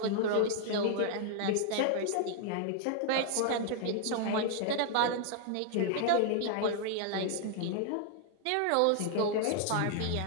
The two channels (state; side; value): different; both; correlation -0.01